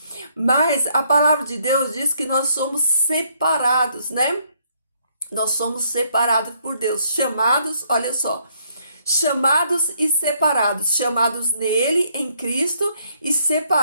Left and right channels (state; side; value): inverted; both; correlation -0.69